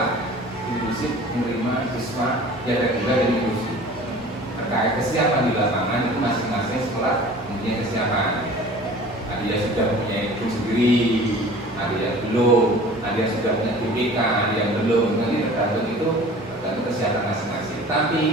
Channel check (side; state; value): both; normal; correlation 0.44